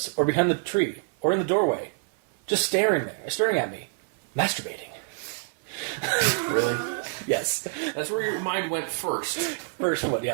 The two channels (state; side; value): silent; left; 60 dB below the other